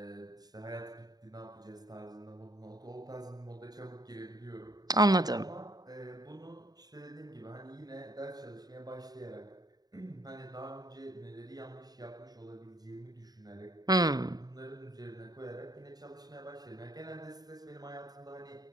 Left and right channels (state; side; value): late; left; 0.19 ms